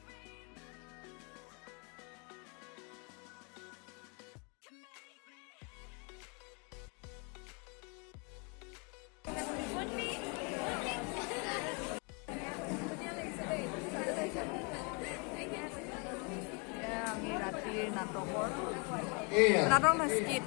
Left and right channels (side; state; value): right; quieter; 33.8 dB